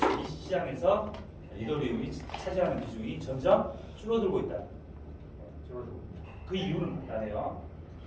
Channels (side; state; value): both; identical; correlation 1.00